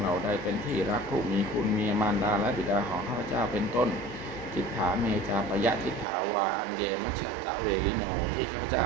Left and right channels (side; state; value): left; drops out; at 6.1 s